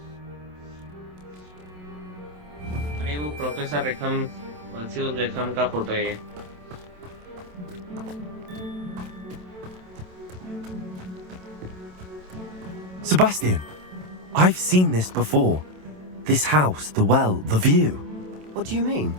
अरे वो professor रेखम virtual रेखम का photo है ये. Sebastian, I've seen this before. This house, the well, the view. What do you mean?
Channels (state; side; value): late; left; 27 ms